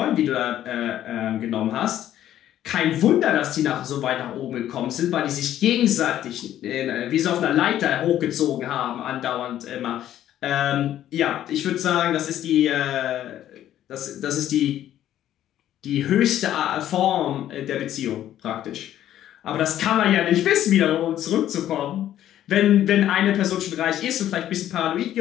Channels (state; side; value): quieter; right; 12.0 dB